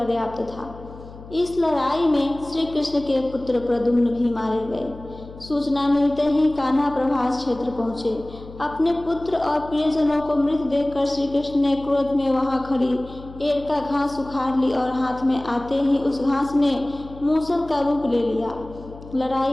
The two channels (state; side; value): noise; left; hum, 17 dB below the sound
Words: था। इस लड़ाई में श्री कृष्ण के पुत्र प्रद्युम्न भी मारे गए। सूचना मिलते ही कान्हा प्रभास क्षेत्र पहुंचे। अपने पुत्र और प्रियजनों को मृत देखकर श्री कृष्ण ने क्रोध में वहां खड़ी एरका घास उखाड़ ली और हाथ में आते ही उस घास ने मूसल का रूप ले लिया। लड़ाई